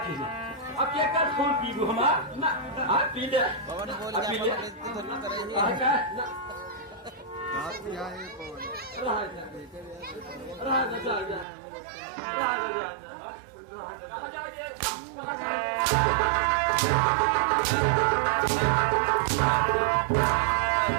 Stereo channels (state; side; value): drops out; left; at 11.5 s